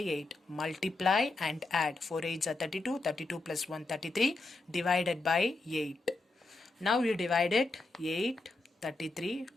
Multiply and add. 4 8s are 32, 32 plus 1, 33, divided by 8. Now you divide it 8, 33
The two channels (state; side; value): quieter; right; 3.2 dB